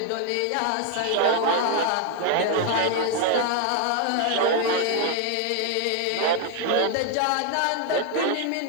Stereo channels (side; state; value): both; different; correlation 0.00